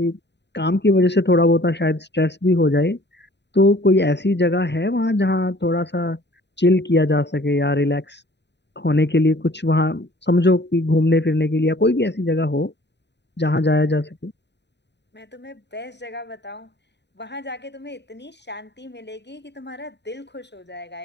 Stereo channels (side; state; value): right; late; 0.50 ms